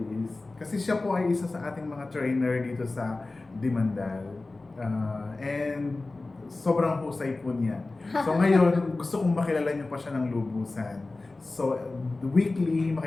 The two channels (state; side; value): quieter; right; 3.3 dB